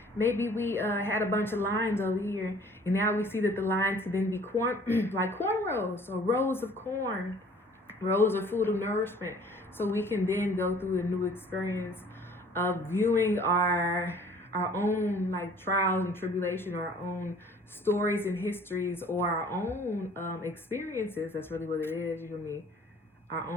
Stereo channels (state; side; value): normal; both; correlation 0.52